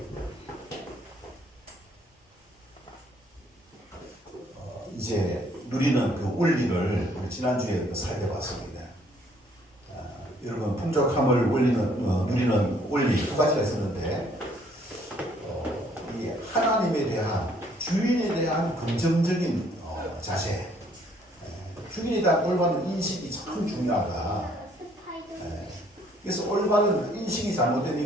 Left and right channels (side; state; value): both; normal; correlation 0.64